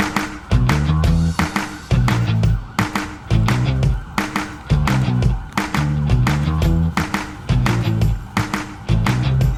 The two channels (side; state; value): both; identical; correlation 1.00